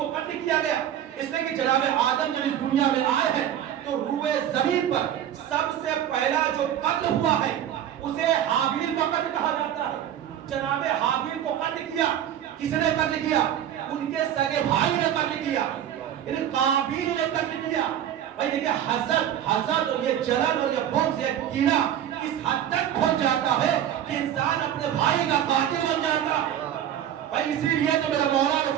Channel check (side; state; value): left; quieter; 10.5 dB